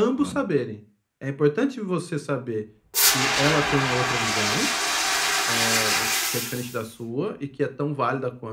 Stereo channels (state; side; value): identical; both; correlation 1.00